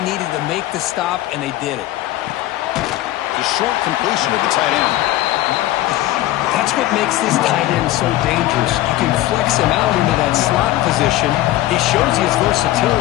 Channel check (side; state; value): right; quieter; 15.4 dB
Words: needed to make the stop, and they did it. The short completion of the tight end. That's what makes this tight end so dangerous. You can flex him out into that slot position. He shows you his